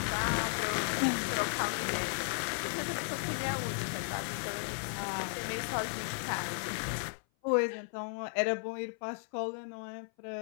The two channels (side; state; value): right; silent; 55 dB below the other